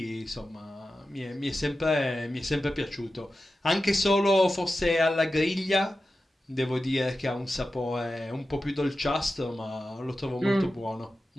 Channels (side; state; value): both; normal; correlation 0.93